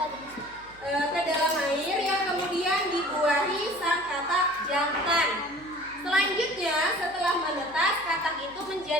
ke dalam air yang kemudian dibuahi sang katak jantan. Selanjutnya setelah menetas, katak itu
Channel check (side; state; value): right; noise; hum, 24 dB below the sound